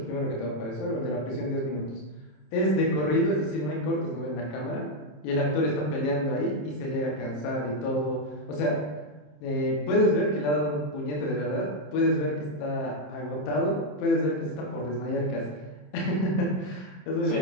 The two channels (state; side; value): late; right; 27 ms